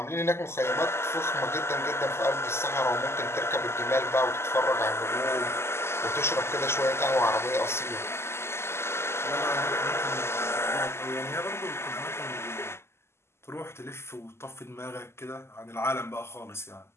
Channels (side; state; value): right; late; 0.12 ms